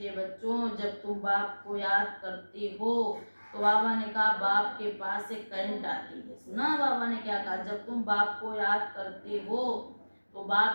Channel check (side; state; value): both; inverted; correlation -1.00